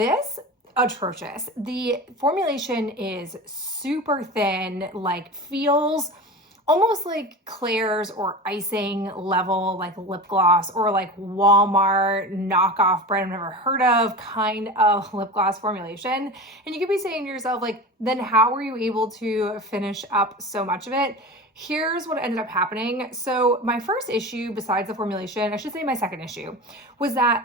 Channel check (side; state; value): both; normal; correlation 0.30